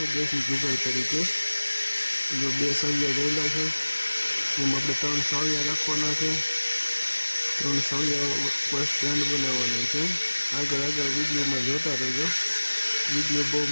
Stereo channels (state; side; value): inverted; both; correlation -1.00